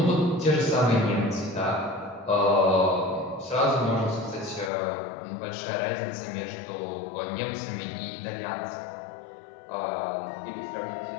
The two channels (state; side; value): drops out; right; at 4.7 s